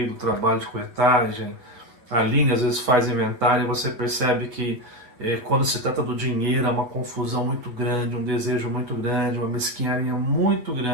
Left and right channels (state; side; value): late; left; 8.4 ms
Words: do trabalho de corretagem. A Aline às vezes faz inventário e você percebe que quando se trata do dinheiro é uma confusão muito grande, um desejo muito grande, uma mesquinharia muito